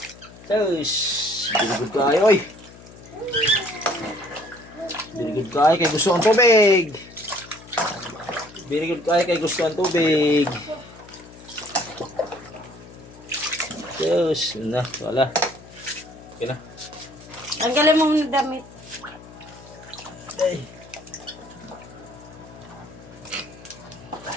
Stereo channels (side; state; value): left; noise; hum, 19 dB below the sound